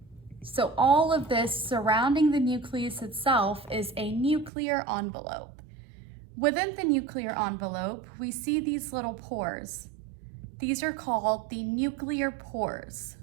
So all of this surrounding the nucleus itself is a nuclear envelope. Within the nuclear envelope, we see these little pores. These are called the nuclear pores.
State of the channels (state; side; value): drops out; left; at 4.5 s